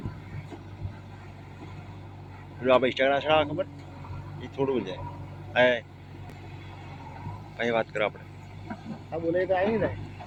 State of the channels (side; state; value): both; identical; correlation 1.00